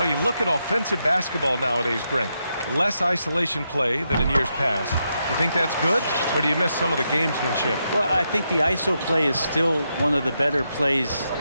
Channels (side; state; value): both; inverted; correlation -0.83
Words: you look at offensive basketball nowadays, Brent. less isolation play than in years past. You think that's good, or do you miss some of the gamesmanship? Well, I think the ISO play is still one of the better plays